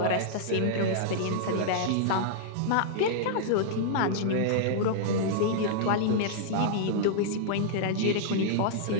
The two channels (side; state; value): both; different; correlation -0.02